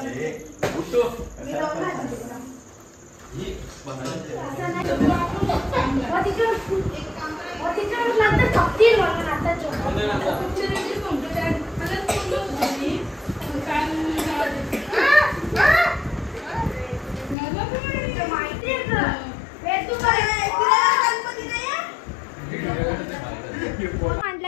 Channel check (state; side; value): drops out; right; at 17.4 s